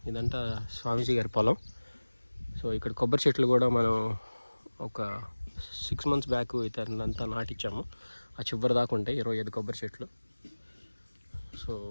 ఇదంతా స్వామీజీ గారి పొలం. సో ఇక్కడ కొబ్బరి చెట్లు కూడా మనం ఒక 6 months బ్యాక్ ఇతనంతా నాటించాము. ఆ చివరి దాకా ఉంటాయి 25 కొబ్బరి చెట్లు. సో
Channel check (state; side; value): inverted; both; correlation -1.00